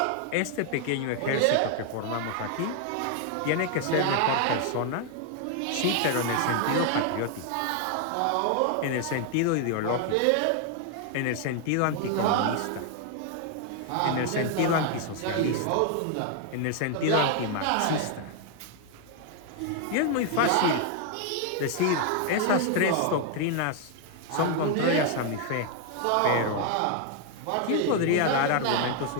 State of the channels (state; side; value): different; both; correlation 0.00